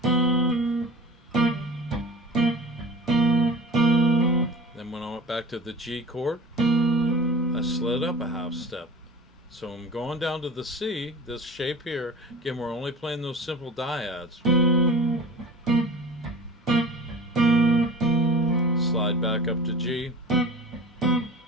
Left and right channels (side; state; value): both; normal; correlation 0.38